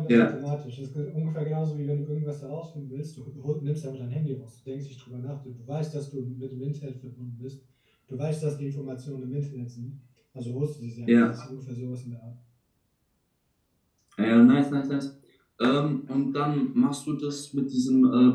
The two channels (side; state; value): both; identical; correlation 1.00